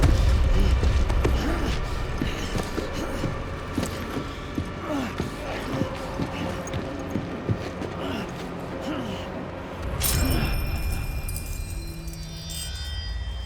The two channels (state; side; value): identical; both; correlation 1.00